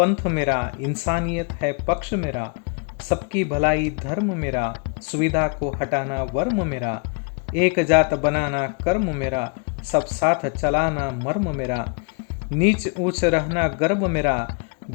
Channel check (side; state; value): right; quieter; 36.8 dB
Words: मेरा, इंसानियत है पक्ष मेरा, सबकी भलाई धर्म मेरा, सुविधा को हटाना वर्म मेरा, एक जात बनाना कर्म मेरा, सब साथ चलाना मर्म मेरा, नीच ऊच रहना गर्भ मेरा,